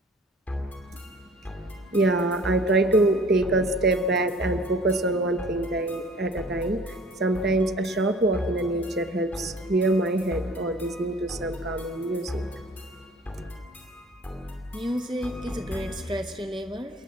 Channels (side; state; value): both; normal; correlation 0.49